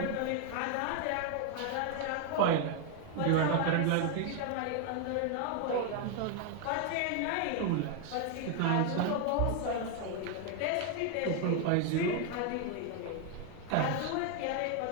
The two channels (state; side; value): different; both; correlation 0.01